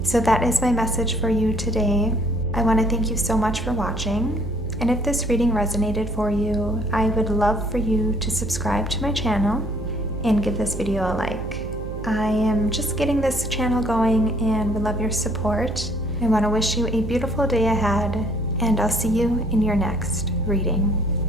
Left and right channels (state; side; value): noise; right; hum, 8 dB below the sound